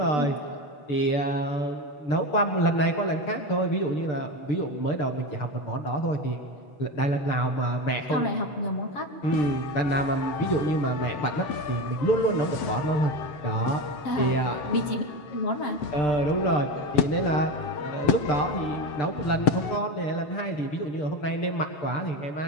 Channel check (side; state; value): right; late; 7.8 ms